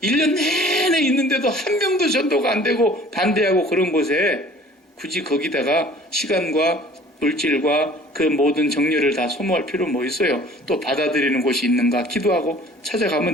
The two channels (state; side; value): normal; both; correlation 0.50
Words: 1년 내내 있는데도 한 명도 전도가 안 되고 반대하고 그런 곳에 굳이 거기다가 시간과 물질과 그 모든 정열을 다 소모할 필요 뭐 있어요. 또 받아들이는 곳이 있는가 기도하고